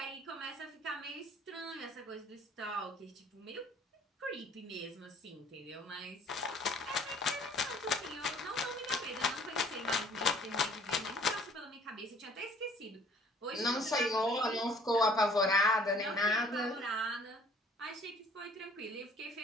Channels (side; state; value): both; normal; correlation 0.56